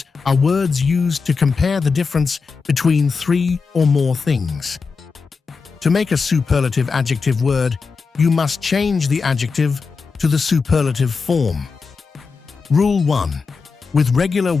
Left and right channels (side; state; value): right; quieter; 4.9 dB